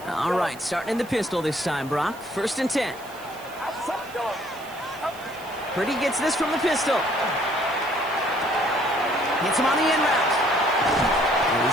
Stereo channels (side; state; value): right; noise; hiss, 21 dB below the sound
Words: All right, starting in the pistol this time, Brock. 1st and 10. Purdy gets this from the pistol. Hits him on the in route. And